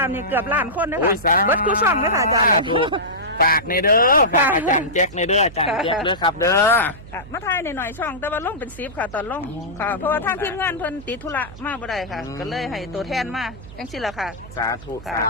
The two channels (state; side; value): noise; right; hum, 17 dB below the sound